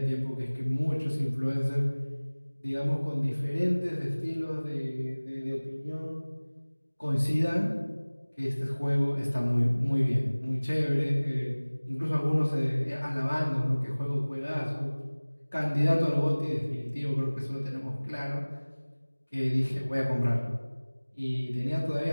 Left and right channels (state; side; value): inverted; both; correlation -1.00